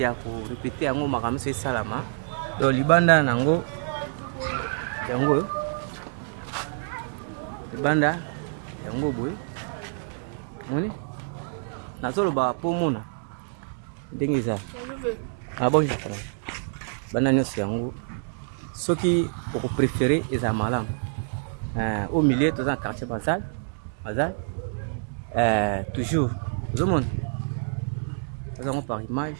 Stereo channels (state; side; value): silent; left; digital silence